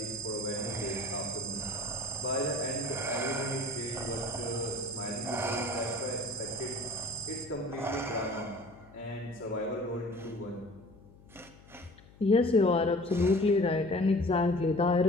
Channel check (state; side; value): noise; left; hum, 23 dB below the sound